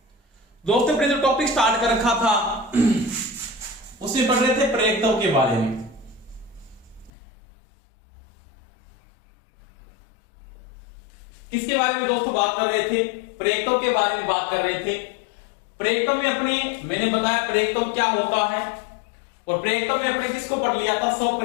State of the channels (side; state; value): right; drops out; at 7.1 s